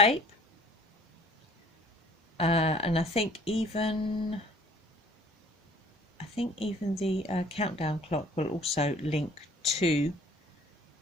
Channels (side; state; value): both; normal; correlation 0.53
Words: and I think even the countdown clock will also link to